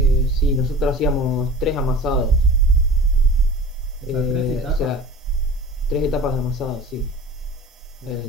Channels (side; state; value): both; normal; correlation 0.39